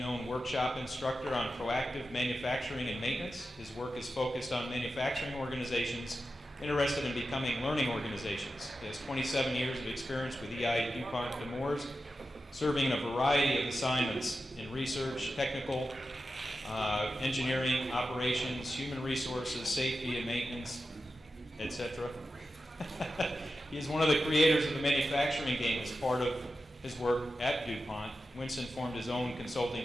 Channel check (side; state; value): both; normal; correlation 0.91